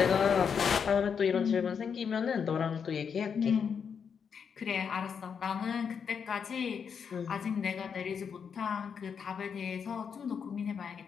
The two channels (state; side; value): quieter; right; 6.7 dB